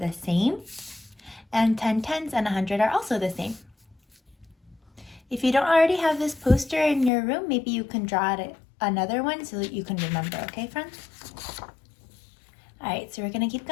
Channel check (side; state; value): right; drops out; at 7.1 s